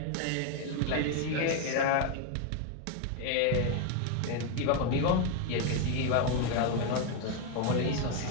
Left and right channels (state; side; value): different; both; correlation 0.01